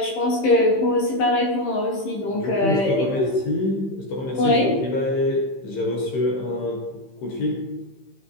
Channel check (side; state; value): right; late; 15 ms